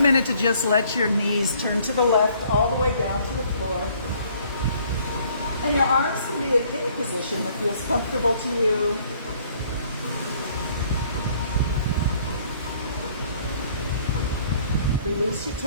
to just let your knees turn to the left all the way down to the floor. And your arms can be in any position that feels comfortable to you. Release your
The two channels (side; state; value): both; inverted; correlation -0.60